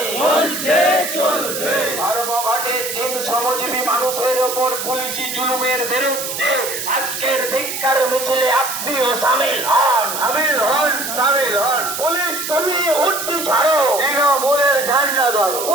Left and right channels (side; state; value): right; noise; hiss, 5 dB below the sound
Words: ধর্মঘটে তিন শ্রমজীবী মানুষের ওপর পুলিশি জুলুমের বিরুদ্ধে আজকের ধিক্কার মিছিলে আপনিও সামিল হন, সামিল হন। পুলিশ তুমি উঠতি ছাড়ো, তৃণমূলের ঝান্ডা ধরো।